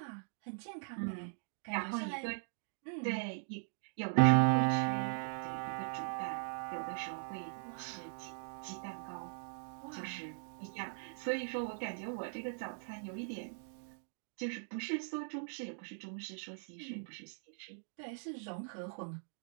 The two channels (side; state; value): left; silent; digital silence